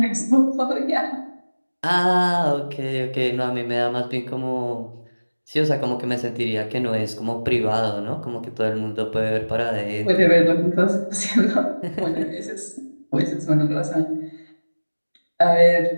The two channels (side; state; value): both; inverted; correlation -1.00